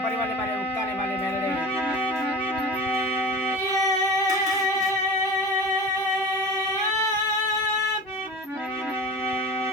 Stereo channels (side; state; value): both; normal; correlation 0.33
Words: પરિવારને મારે ઉક્તાને મારે મેલડી